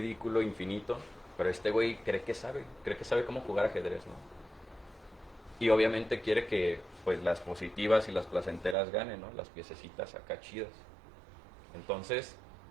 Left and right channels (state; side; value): drops out; left; at 8.8 s